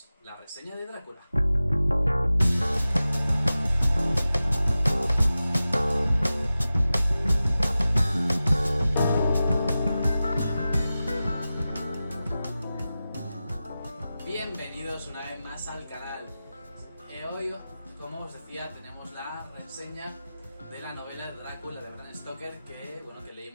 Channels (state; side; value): inverted; both; correlation -0.95